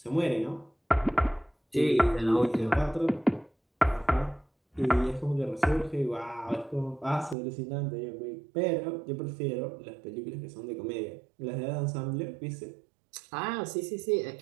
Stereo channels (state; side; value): drops out; left; at 7.4 s